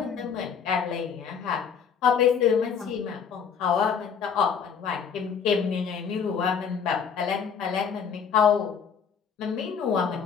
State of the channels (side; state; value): right; quieter; 6.8 dB